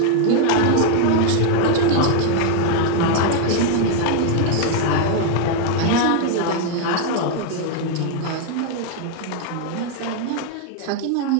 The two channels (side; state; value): both; different; correlation 0.00